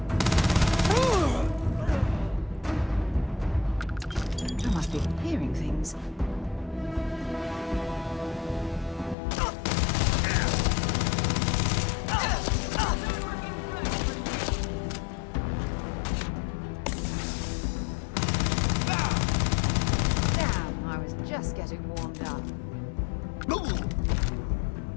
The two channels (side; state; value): right; drops out; at 9.2 s